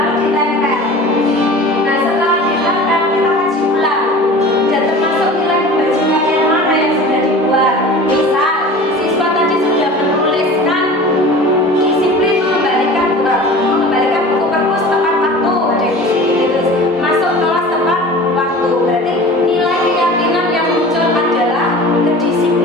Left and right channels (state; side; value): normal; both; correlation 0.39